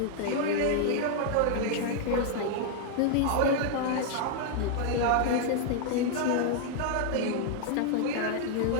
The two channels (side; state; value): both; different; correlation 0.00